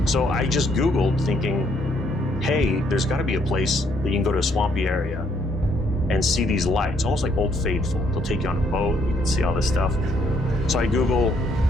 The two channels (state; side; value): normal; both; correlation 0.69